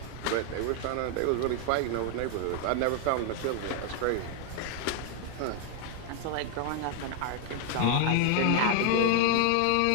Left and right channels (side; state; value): both; different; correlation 0.00